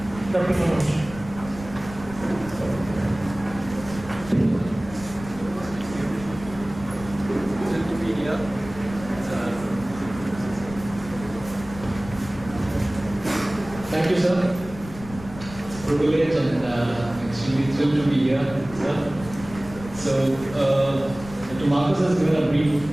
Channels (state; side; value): noise; left; rumble, 15 dB below the sound